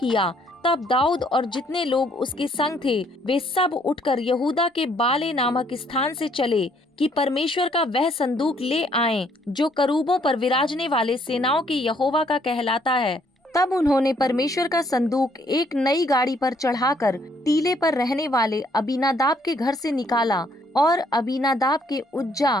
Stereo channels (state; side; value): normal; both; correlation 0.67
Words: तब दाऊद और जितने लोग उसके संग थे वे सब उठकर यहूदा के बाले नामक स्थान से चले कि परमेश्वर का वह संदूक ले आएं जो करूबों पर विराजने वाले सेनाओं के यहोवा का कहलाता है। तब उन्होंने परमेश्वर का संदूक एक नई गाड़ी पर चढ़ाकर टीले पर रहने वाले अबीनादाब के घर से निकाला और अबीनादाब के उज्जा